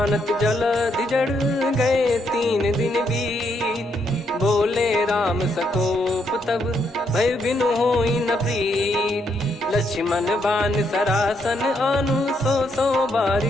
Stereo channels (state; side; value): normal; both; correlation 0.76